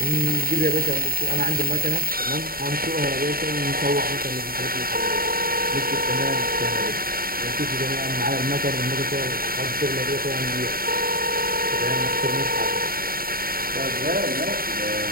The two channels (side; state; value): left; late; 0.43 ms